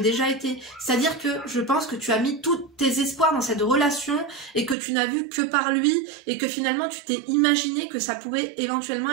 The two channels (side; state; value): left; drops out; at 4.8 s